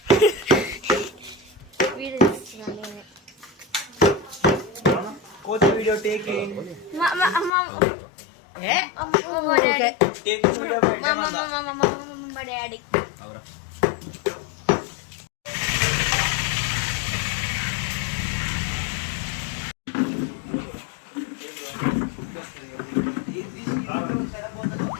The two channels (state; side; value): drops out; right; at 7.5 s